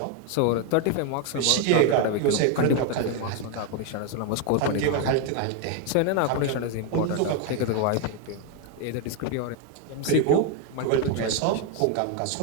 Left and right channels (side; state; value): both; different; correlation 0.01